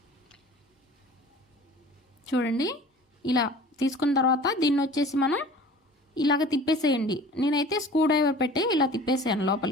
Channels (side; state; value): both; normal; correlation 0.44